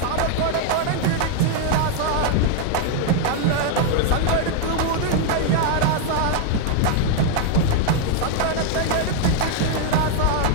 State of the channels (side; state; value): both; different; correlation 0.00